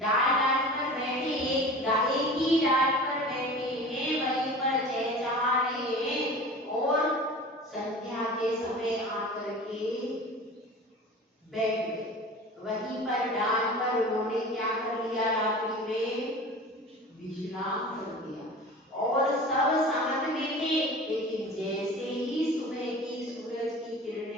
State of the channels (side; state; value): both; normal; correlation 0.38